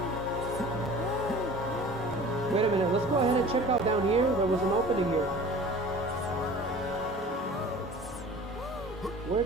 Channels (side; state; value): both; normal; correlation 0.43